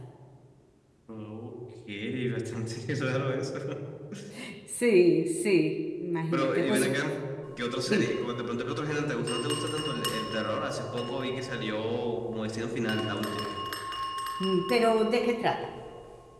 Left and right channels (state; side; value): identical; both; correlation 1.00